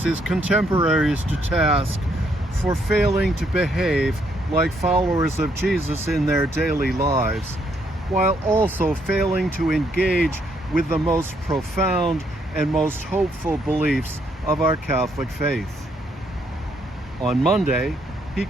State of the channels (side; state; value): both; normal; correlation 0.72